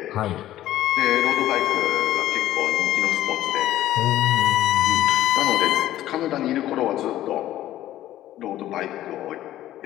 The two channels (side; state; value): right; quieter; 13.7 dB